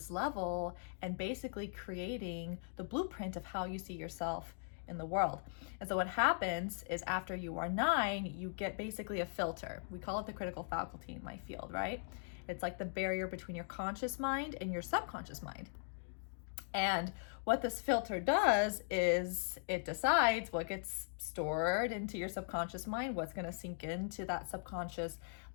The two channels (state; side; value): silent; right; digital silence